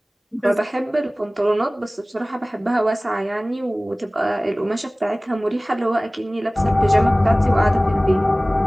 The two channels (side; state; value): both; normal; correlation 0.98